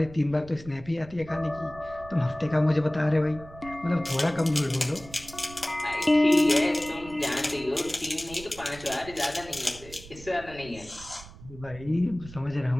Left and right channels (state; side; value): noise; right; rumble, 17 dB below the sound